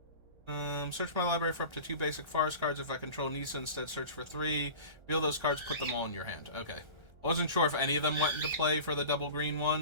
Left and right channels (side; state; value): left; late; 1.3 ms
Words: Search my library for up to 2 basic forest cards. If I control Nisa, instead search for 3. Reveal those cards, put them all in your hand. Okay. I wasn't sure if any of them went into play for the double green